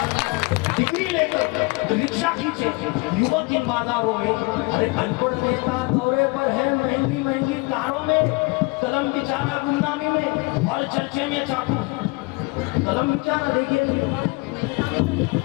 डिग्री लेकर रिक्शा खींचे युवक इन बाजारों में, अरे अनपढ़ नेता दौरे पर है महंगी महंगी कारों में। कलम बिचाना गुमनामी में और चर्चे में चाकू, कलम बिचाना देखिए,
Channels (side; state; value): right; quieter; 26.2 dB